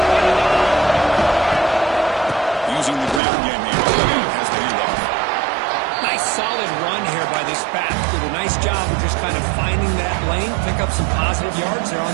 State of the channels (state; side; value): drops out; left; at 3.2 s